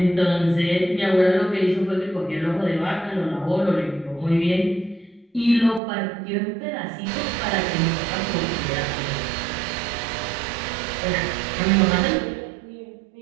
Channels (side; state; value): left; drops out; at 5.8 s